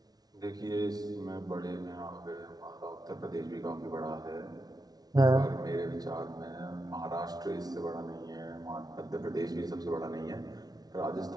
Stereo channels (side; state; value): left; late; 0.19 ms